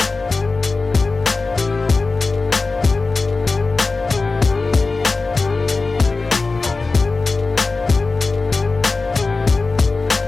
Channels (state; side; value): quieter; right; 3.8 dB